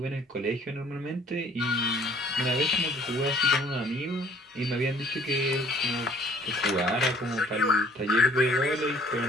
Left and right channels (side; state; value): both; normal; correlation 0.57